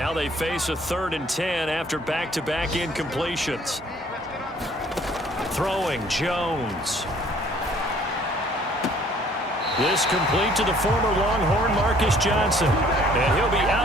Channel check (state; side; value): normal; both; correlation 0.58